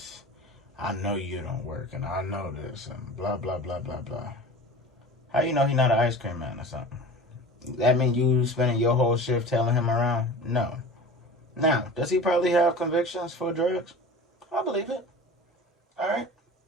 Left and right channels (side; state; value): both; normal; correlation 0.37